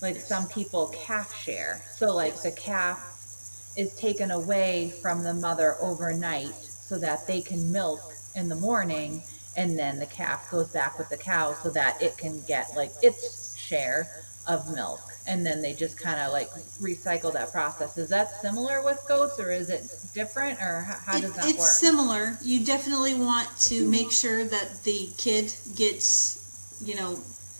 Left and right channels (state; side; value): inverted; both; correlation -1.00